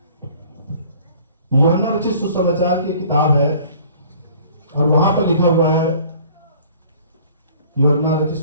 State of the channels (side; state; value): both; inverted; correlation -0.51